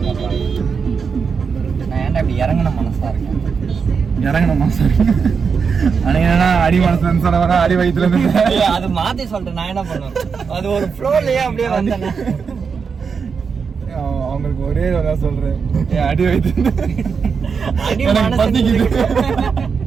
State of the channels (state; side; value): quieter; left; 5.8 dB